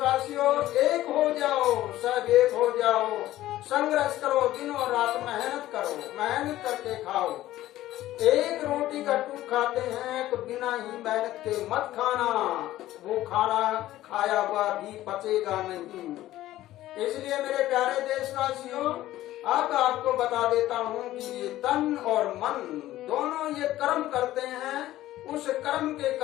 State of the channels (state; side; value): quieter; right; 14.8 dB